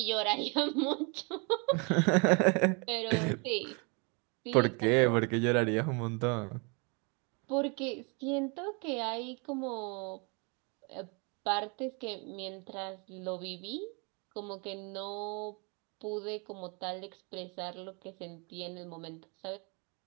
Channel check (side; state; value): left; quieter; 32.9 dB